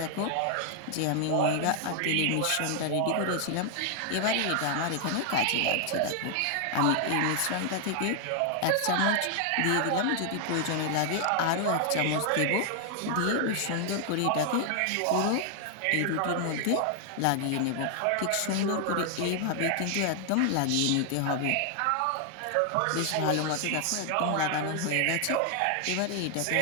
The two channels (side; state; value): both; different; correlation 0.00